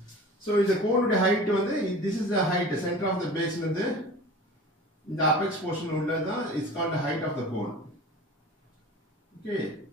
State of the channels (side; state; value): both; normal; correlation 0.39